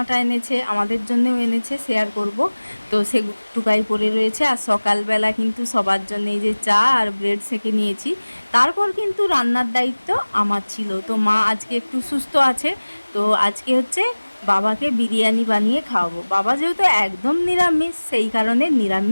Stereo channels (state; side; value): inverted; both; correlation -1.00